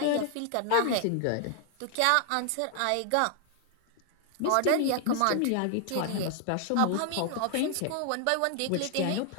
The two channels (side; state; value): both; different; correlation 0.00